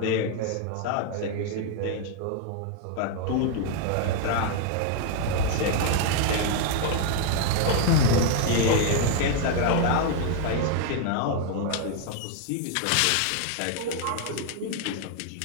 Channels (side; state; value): both; different; correlation 0.01